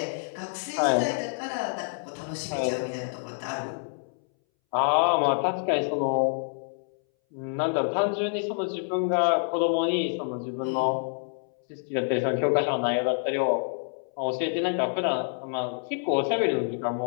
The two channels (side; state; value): right; silent; 60 dB below the other